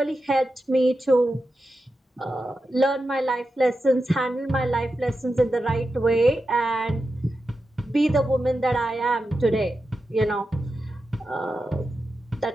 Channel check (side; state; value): both; normal; correlation 0.90